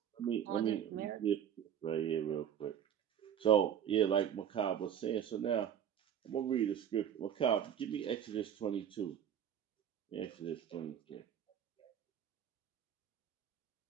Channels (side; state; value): left; quieter; 9.2 dB